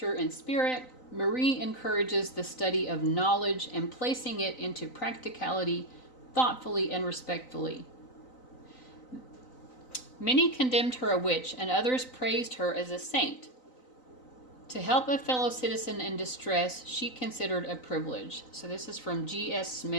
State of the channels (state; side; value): late; right; 3.9 ms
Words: in spirit, Marie encourages the study of knowledge and placing it into practicality thoughtfully and respectfully. Many condemned her a witch and others praised her as a saint. To help a fellow citizen in distress, she considered a privilege. So this is from G.S.